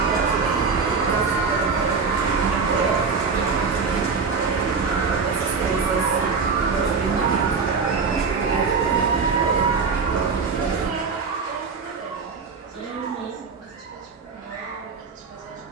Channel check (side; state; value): left; quieter; 5.1 dB